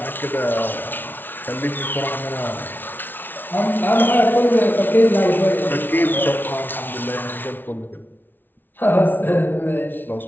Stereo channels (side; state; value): right; late; 0.093 ms